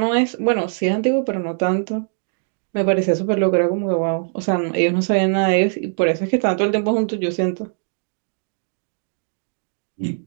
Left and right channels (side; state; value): left; silent; 62 dB below the other